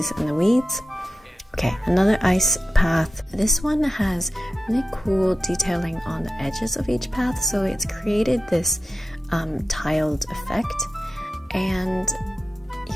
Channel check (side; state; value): both; normal; correlation 0.92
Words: and the weeds. Okay, another ice path. This one has really cool detailing on the edges of each path, so it's created this tiled effect. And